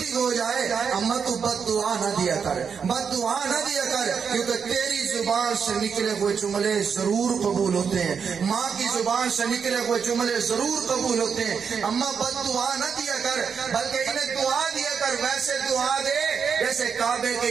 ہو جائے، اماں تو بد دعا نہ دیا کر، بد دعا نہ دیا کر، کیونکہ تیری زبان سے نکلے ہوئے جملے ضرور قبول ہوتے ہیں، ماں کی زبان سے نکلے ہوئے جملے ضرور قبول ہوتے ہیں۔ اماں بد دعا نہ دیا کر، بلکہ انہیں دعا دیا کر، ویسے دعا دے جیسے کعبے کے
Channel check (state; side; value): quieter; left; 6.4 dB